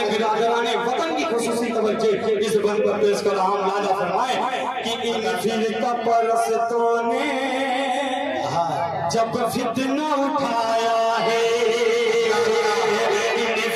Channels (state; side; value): identical; both; correlation 1.00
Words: برادران وطن کی خصوصی توجہ اس بند پر پیش کر رہا ہوں، ملاحظہ فرمائے کہ ان فرقہ پرستوں نے جب فتنہ اٹھایا ہے، ان